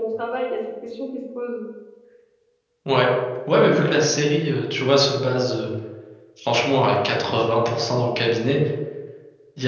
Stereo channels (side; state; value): both; identical; correlation 1.00